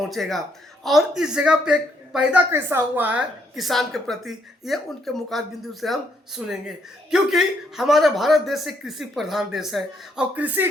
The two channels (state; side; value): normal; both; correlation 0.73